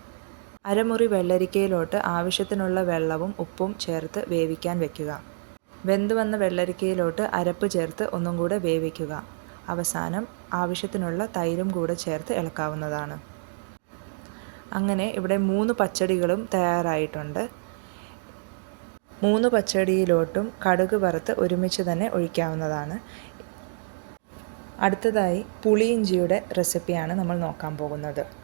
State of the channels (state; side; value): silent; left; digital silence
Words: അരമുറി വെള്ളരിക്കയിലോട്ട് ആവശ്യത്തിനുള്ള വെള്ളവും ഉപ്പും ചേർത്ത് വേവിക്കാൻ വെക്കുക. വെന്തു വന്ന വെള്ളരിക്കയിലോട്ട് അരപ്പ് ചേർത്ത് ഒന്നും കൂടെ വേവിക്കുക. അവസാനം ആവശ്യത്തിനുള്ള തൈരും കൂടെ ചേർത്ത് ഇളക്കാവുന്നതാണ്. അങ്ങനെ ഇവിടെ 3 പച്ചടികളും തയ്യാറായിട്ടുണ്ട്. 3 പച്ചടിയിലോട്ടും കടുക് വറുത്ത് ഒരുമിച്ച് തന്നെ ഒഴിക്കാവുന്നതാണ്. അടുത്തതായി പുളിയിഞ്ചിയുടെ റെസിപ്പിയാണ് നമ്മൾ നോക്കാൻ പോകുന്നത്.